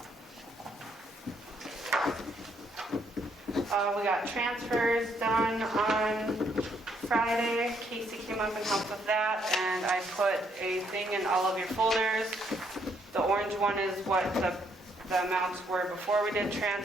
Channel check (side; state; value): both; normal; correlation 0.71